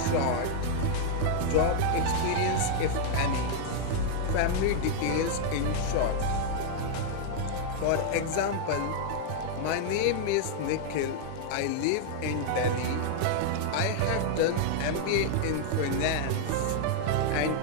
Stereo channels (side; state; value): both; different; correlation -0.01